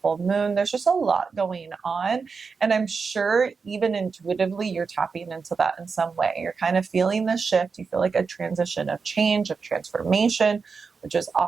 moon. There's just a lot going on. And I'm sure even intuitively, you're tapping into that in some way. You're kind of feeling this shift. You feel like a transition of change, of transformation, which is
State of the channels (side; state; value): left; quieter; 5.1 dB